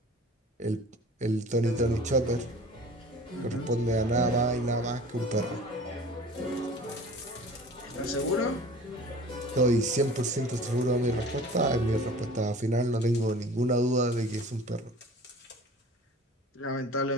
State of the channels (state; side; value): normal; both; correlation 0.43